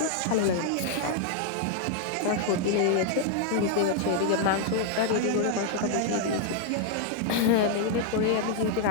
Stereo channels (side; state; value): both; different; correlation 0.00